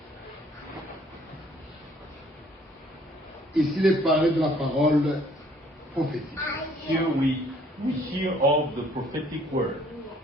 Ici, il est parlé de la parole prophétique. Here we hear of the prophetic word.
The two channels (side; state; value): both; normal; correlation 0.60